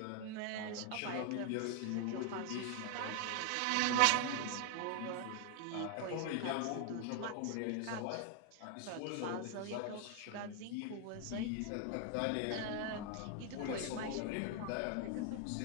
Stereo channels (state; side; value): different; both; correlation 0.00